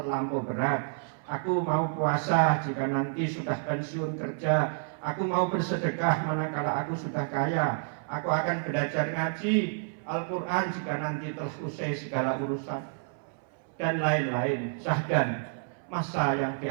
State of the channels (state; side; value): silent; left; 58 dB below the other